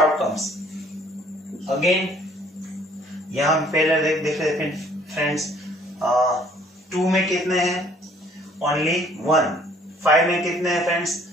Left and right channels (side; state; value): both; normal; correlation 0.58